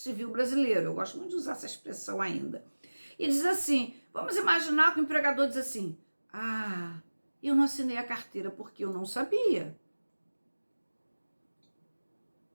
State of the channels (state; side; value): inverted; both; correlation -1.00